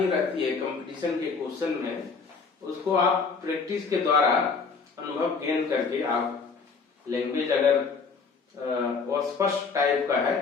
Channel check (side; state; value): right; quieter; 5.0 dB